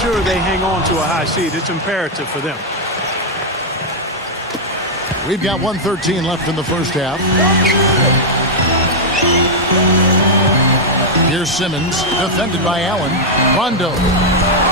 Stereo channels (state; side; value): normal; both; correlation -0.03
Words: they hang on to a high seed. It's imperative for them. We've got 1:13 left in the first half. Here's Simmons, defended by Allen. Rondo.